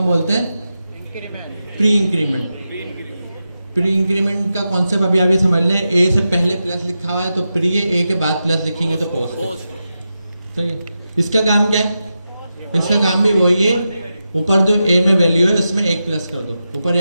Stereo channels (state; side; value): inverted; both; correlation -0.89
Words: बोलते हैं प्री इंक्रीमेंट। प्री इंक्रीमेंट का कॉन्सेप्ट अभी आप ये समझ लें, ए से पहले प्लस लिखा हुआ है तो प्री है, ए के बाद प्लस लिखेंगे तो पोस्ट। सही है। इसका काम क्या है? इसका काम भी वही है, ऊपर जो ए में वैल्यू है उसमें 1 प्लस कर दो। ऊपर